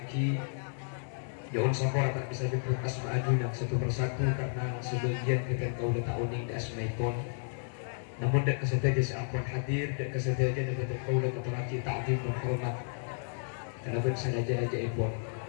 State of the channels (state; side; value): silent; right; 56 dB below the other